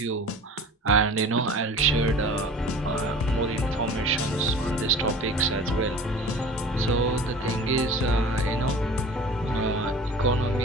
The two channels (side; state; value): both; normal; correlation 0.41